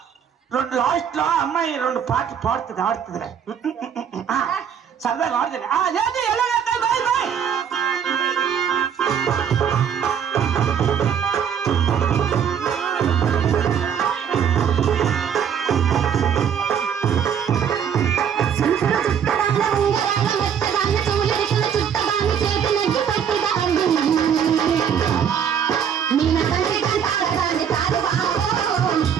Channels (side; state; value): left; quieter; 8.0 dB